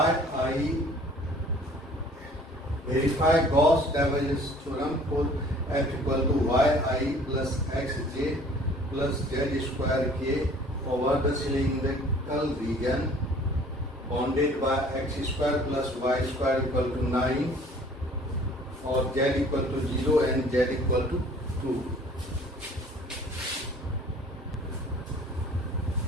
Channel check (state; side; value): normal; both; correlation 0.52